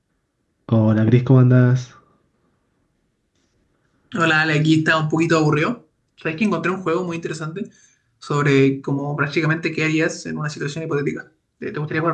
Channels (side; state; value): both; identical; correlation 1.00